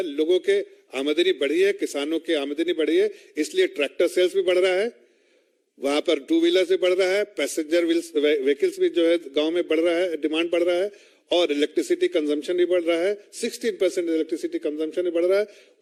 लोगों के आमदनी बढ़ी है, किसानों की आमदनी बढ़ी है, इसलिए ट्रैक्टर सेल्स भी बढ़ रहा है, वहां पर 2 व्हीलर से बढ़ रहा है, पैसेंजर व्हीकल्स भी जो है गांव में बढ़ रहा है, डिमांड बढ़ रहा है और इलेक्ट्रिसिटी कंजम्पशन भी बढ़ रहा है, 16% इलेक्ट्रिसिटी कंजम्पशन भी बढ़ रहा है।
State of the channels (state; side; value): identical; both; correlation 1.00